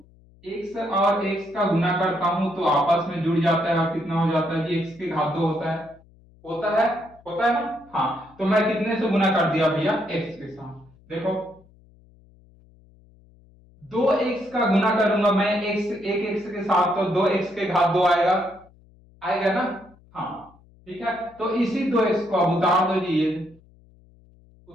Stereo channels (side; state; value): left; noise; hum, 28 dB below the sound